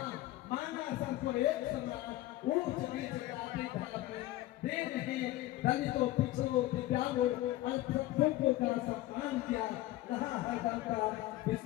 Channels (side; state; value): right; quieter; 16.2 dB